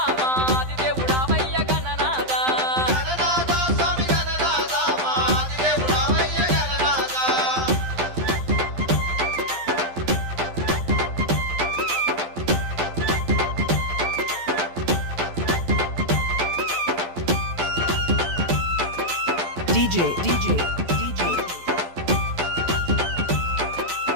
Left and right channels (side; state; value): left; late; 12 ms